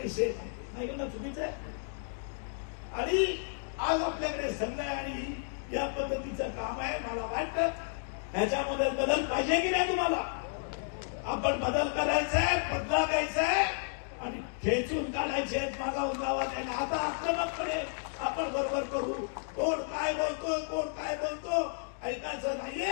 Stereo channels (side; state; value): right; silent; digital silence